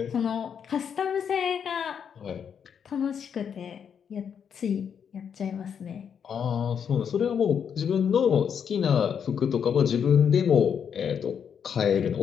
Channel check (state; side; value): quieter; right; 7.6 dB